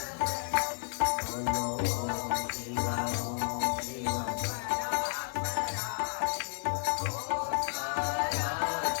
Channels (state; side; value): silent; right; digital silence